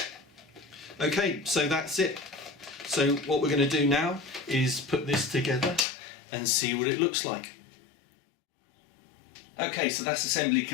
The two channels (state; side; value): drops out; right; at 5.9 s